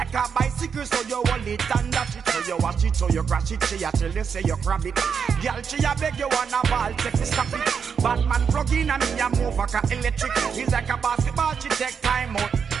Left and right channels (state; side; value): quieter; left; 6.6 dB